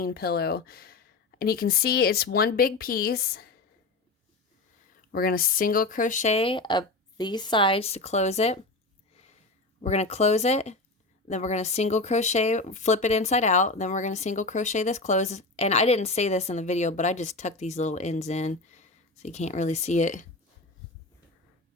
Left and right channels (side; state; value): right; quieter; 3.3 dB